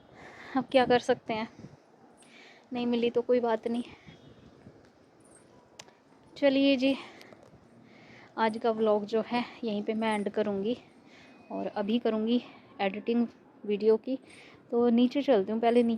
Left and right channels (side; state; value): both; identical; correlation 1.00